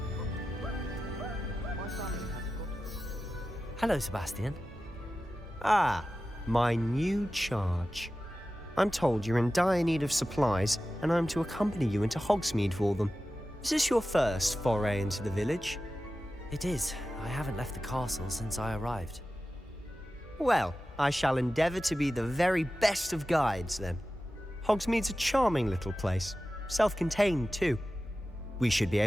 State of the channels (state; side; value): normal; both; correlation 0.94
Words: Hello, Sebastian. Ah, my new charge. I'm told you're in dire need of supplies, and I'm to accompany you into Hogsmeade for them. Is this your first foray into the village? It is. I haven't left the castle since I arrived. Well, I shall endeavour to be the very best of guides, then. Hogsmeade's a charming little place, self-contained too. We should be